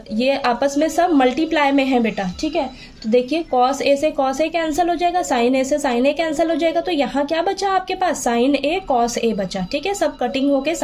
आपस में सब मल्टीप्लाई में है बेटा, ठीक है। तो देखिए कॉस ए से कॉस ए कैंसिल हो जाएगा, साइन ए से साइन ए कैंसिल हो जाएगा, तो यहाँ क्या बचा आपके पास? साइन ए कॉस ए बचा, ठीक है। सब कटिंग होके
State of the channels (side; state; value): both; identical; correlation 1.00